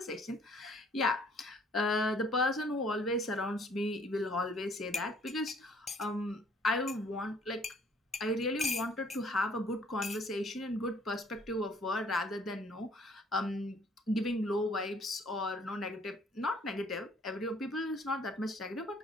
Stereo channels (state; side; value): normal; both; correlation 0.59